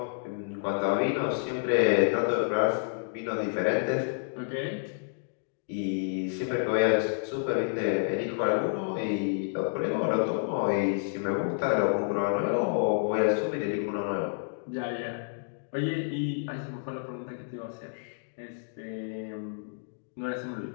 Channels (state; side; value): silent; right; digital silence